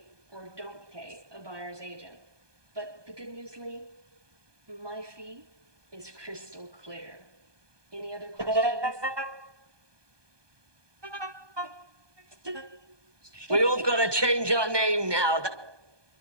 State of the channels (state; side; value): late; left; 1.2 ms